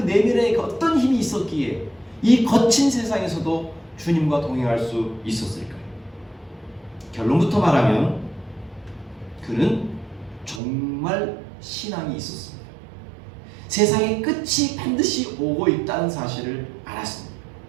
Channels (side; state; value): left; drops out; at 10.6 s